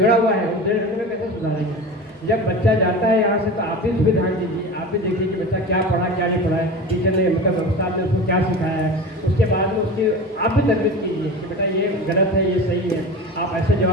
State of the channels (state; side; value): normal; both; correlation 0.32